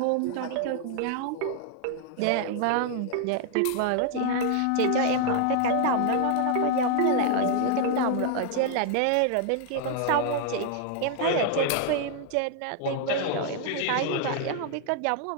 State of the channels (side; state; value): both; different; correlation 0.00